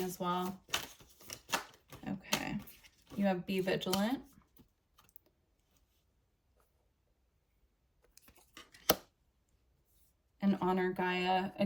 well. Okay. You have be vigilant. And honor Gaia.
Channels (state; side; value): identical; both; correlation 1.00